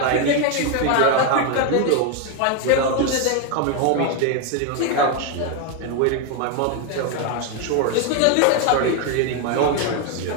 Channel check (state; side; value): different; both; correlation 0.01